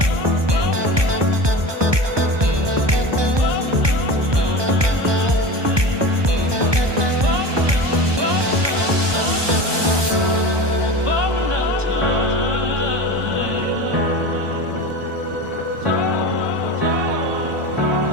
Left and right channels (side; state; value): left; late; 1.2 ms